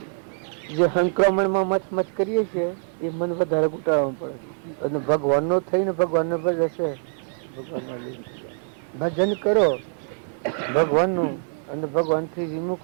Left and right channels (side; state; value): left; silent; digital silence